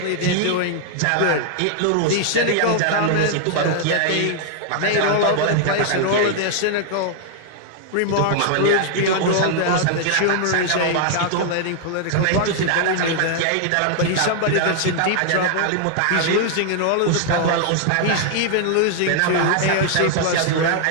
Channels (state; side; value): different; both; correlation 0.00